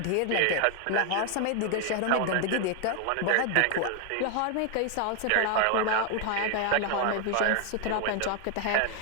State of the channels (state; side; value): different; both; correlation 0.00